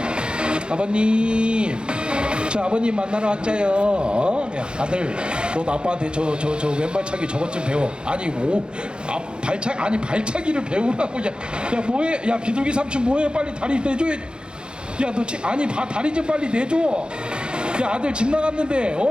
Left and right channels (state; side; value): late; left; 0.051 ms